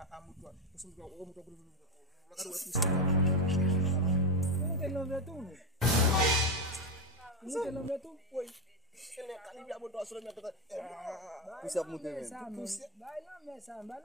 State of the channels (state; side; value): normal; both; correlation 0.09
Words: moto pour son moto pour la carte poussière. Como que não vê tu? Como que não vê tu? Oui. Elle est calibée à moto sur le mettre. Puxa muito men. Vai lá mesa on va